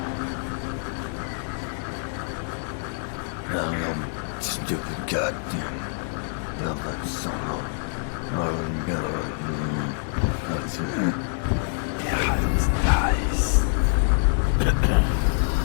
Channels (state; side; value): silent; right; digital silence